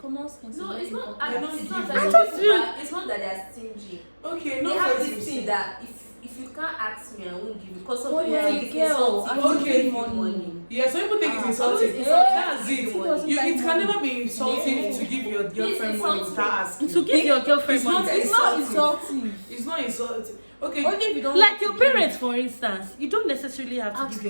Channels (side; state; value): both; inverted; correlation -1.00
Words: sense. No, is it's very not. important. You're not It's not giving. that I just people feel- are- it's not that they are stingy. Okay, They no have for this you. thing that if you can't ask me, I won't give you. Because some Oh, people yeah, think it's girl, insulting I to will give give you money. money. Yeah, some people think it's Ah. insulting. Always That's insulting. it. Who doesn't You, like it can money? never be insulting Yeah. to give your girlfriend money insulting. without asking. To give your girlfriend It's not money. It's not insulting. insulting. It's not insulting. Okay. Only if you don't Like want your to give. parents, for instance, you don't necessarily have to Ask- give